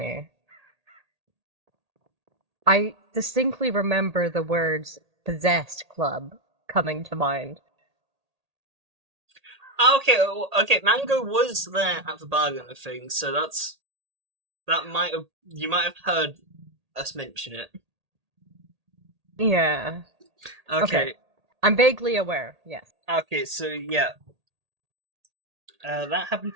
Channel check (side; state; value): left; late; 1.8 ms